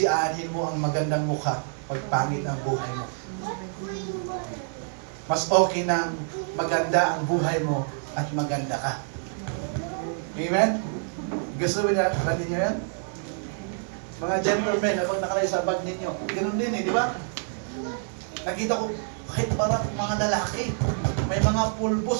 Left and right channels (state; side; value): silent; left; 60 dB below the other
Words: aanhin mo ang magandang mukha pag pangit ang buhay mo. Mas okay nang maganda ang buhay mo at maganda ka. Amen? Gusto mo niya, natin niyo yan? Mga gentlemen, habang nakalay sa bag ninyo, ganoon din di ba? Nakita ko, kahit parang mga lalaki, may mga